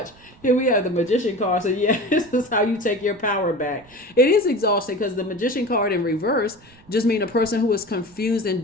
Here we have the Magician card. So yeah, this is how you take your power back. It is exhausting because the Magician card in reverse just mean a person who is confused and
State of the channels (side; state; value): right; noise; rumble, 27 dB below the sound